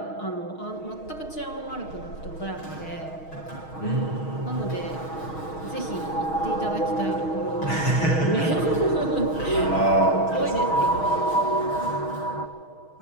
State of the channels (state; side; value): late; right; 6.3 ms